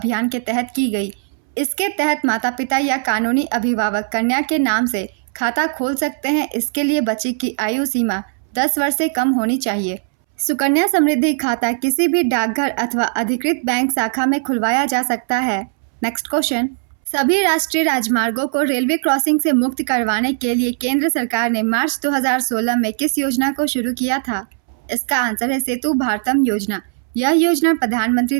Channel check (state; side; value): silent; left; 67 dB below the other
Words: के तहत की गई। इसके तहत माता पिता या कानूनी अभिभावक कन्या के नाम से खाता खोल सकते हैं। इसके लिए बच्ची की आयु सीमा 10 वर्ष से कम होनी चाहिए। सुकन्या समृद्धि खाता किसी भी डाकघर अथवा अधिकृत बैंक शाखा में खुलवाया जा सकता है। नेक्स्ट क्वेश्चन, सभी राष्ट्रीय राजमार्गों को रेलवे क्रॉसिंग से मुक्त करवाने के लिए केंद्र सरकार ने मार्च 2016 में किस योजना को शुरू किया था? इसका आंसर है सेतु भारतम योजना। यह योजना प्रधानमंत्री